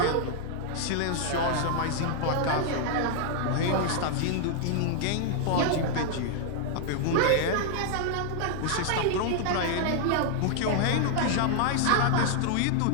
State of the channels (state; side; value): different; both; correlation 0.00